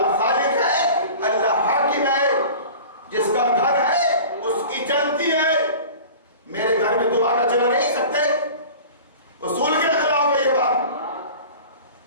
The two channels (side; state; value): both; inverted; correlation -0.39